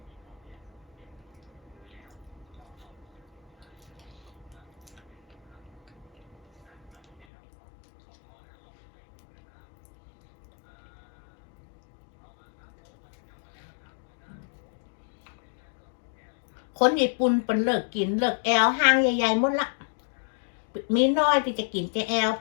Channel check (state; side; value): drops out; right; at 7.2 s